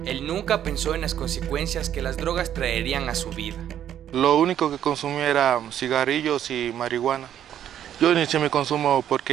Él nunca pensó en las consecuencias que las drogas traerían a su vida. Lo único que consumía era cigarrillos y marihuana. Yo inicié mi consumo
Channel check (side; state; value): left; quieter; 10.5 dB